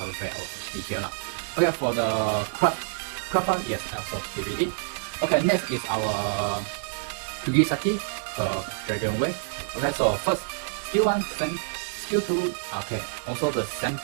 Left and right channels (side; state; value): left; silent; 60 dB below the other